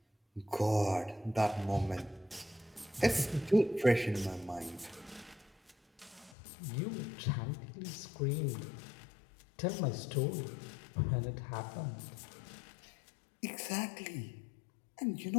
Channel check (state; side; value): drops out; right; at 6.4 s